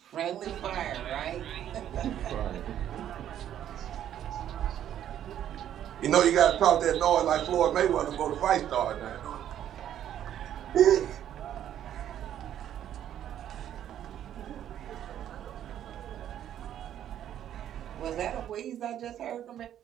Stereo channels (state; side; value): quieter; left; 10.7 dB